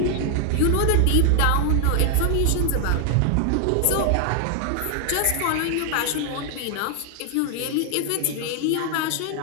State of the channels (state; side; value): different; both; correlation 0.00